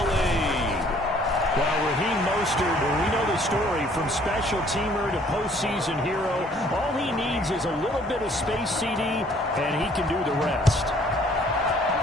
lead. Well, Raheem Mostert, we know the story, from special teamer to postseason hero. All he needs is a little bit of space, CD, and he can do the rest.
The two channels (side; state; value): both; normal; correlation 0.59